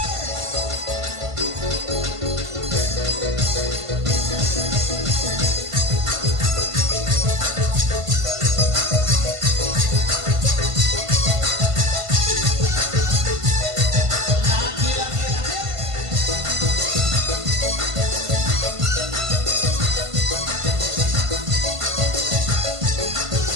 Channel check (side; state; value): left; late; 1.5 ms